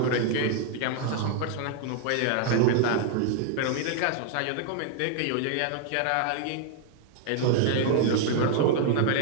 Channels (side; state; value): both; different; correlation 0.00